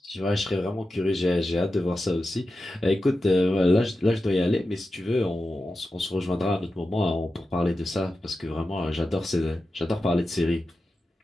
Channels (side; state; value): both; normal; correlation 0.92